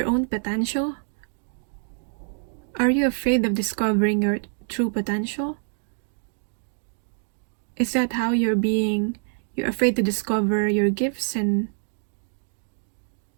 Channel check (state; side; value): silent; left; 61 dB below the other